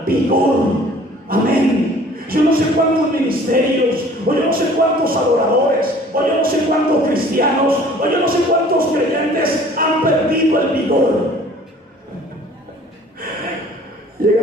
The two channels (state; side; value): normal; both; correlation 0.51